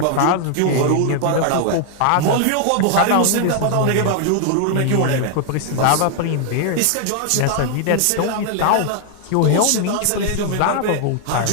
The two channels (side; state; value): both; different; correlation 0.00